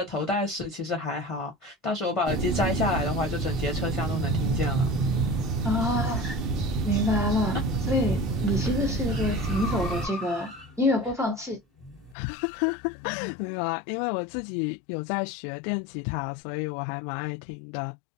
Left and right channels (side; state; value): right; drops out; at 12.2 s